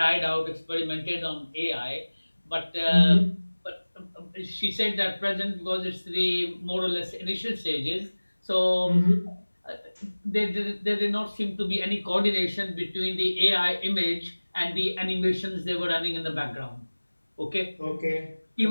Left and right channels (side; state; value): both; inverted; correlation -1.00